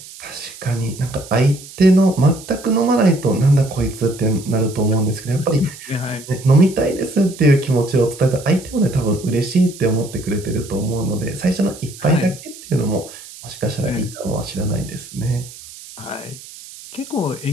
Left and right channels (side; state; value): right; noise; hiss, 17 dB below the sound